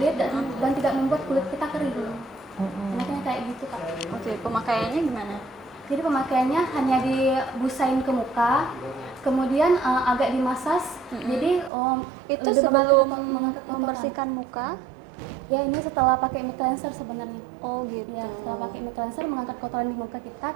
dan tidak membuat kulit kita kering. Enaknya kayak gitu, Kak. Oke, pemakaiannya gimana? Jadi pemakaiannya hanya dibusain ke muka, kemudian agak dimasas. Jadi Itu lebih sebelum mengangkat kotoran. membersihkan muka. Ya, ini setelah pakai mic cleanser sebenarnya. Oh gitu. Ya, setelah pakai mic cleanser mengangkat kotoran di muka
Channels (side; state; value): left; drops out; at 11.7 s